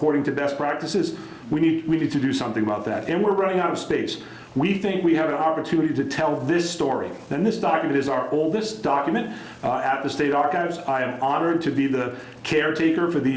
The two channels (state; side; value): identical; both; correlation 1.00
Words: to best practices. We need to do something about that. And we're running out of space. We think we have an opportunity to tell this story. And this document is our oldest document at the State Archives. I am honored to be the caretaker for